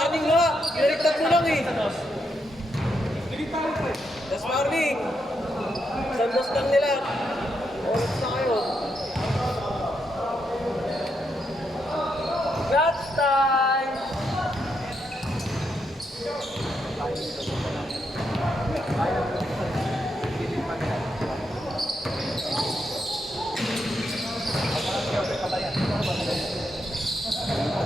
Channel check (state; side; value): normal; both; correlation 0.81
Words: nga. Pinaliktad mo lang eh. Last warning. Sandos lang nila. Oras na kayo. That's time.